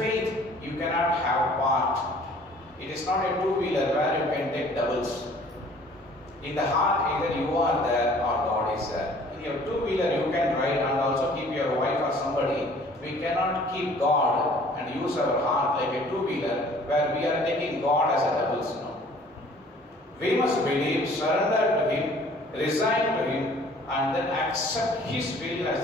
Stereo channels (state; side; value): normal; both; correlation 0.53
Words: you cannot have part. It is not a two-wheeler where you can take doubles. In the heart, either you are there or God is there. In your two-wheeler, you can ride and also keep your wife or somebody. We cannot keep God and use our heart like a two-wheeler where we are taking God as a doubles. No. We must believe, surrender to him, resign to him, and then accept his will as